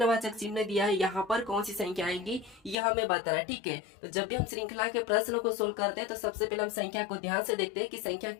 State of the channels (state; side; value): drops out; right; at 2.8 s